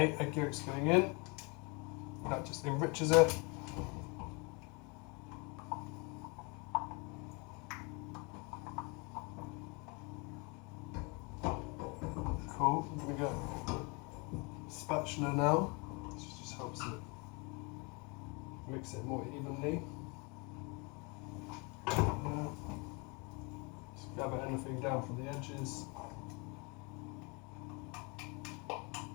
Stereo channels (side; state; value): right; quieter; 30.6 dB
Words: egg yolk's going in. That just enriches it. Cool, I'm going to go spatula now. This just helps it mix it more evenly. Just gather anything down from the edges.